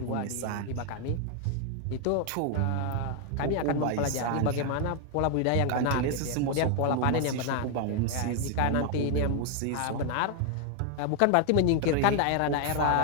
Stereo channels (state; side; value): different; both; correlation 0.00